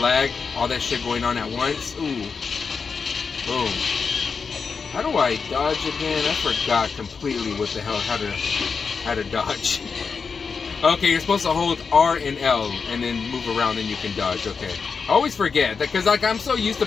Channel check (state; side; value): quieter; right; 5.4 dB